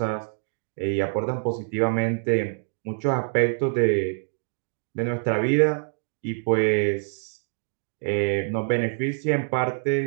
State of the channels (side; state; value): left; silent; digital silence